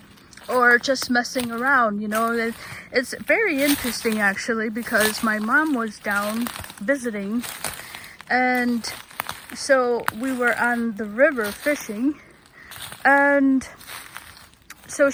Or just messing around, you know. It's very interesting actually, because my mom was down visiting, and so we were on the river fishing, and so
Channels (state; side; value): identical; both; correlation 1.00